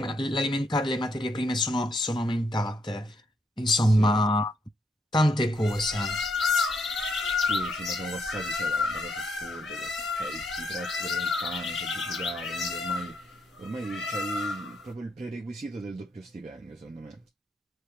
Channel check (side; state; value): both; normal; correlation 0.75